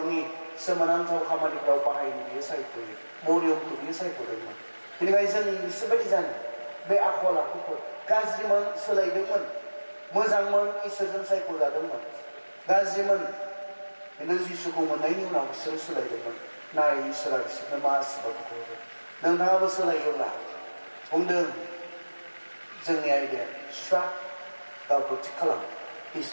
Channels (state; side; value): inverted; both; correlation -1.00